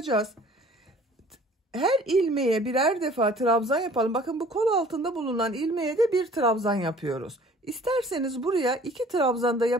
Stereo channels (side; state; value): both; normal; correlation 0.51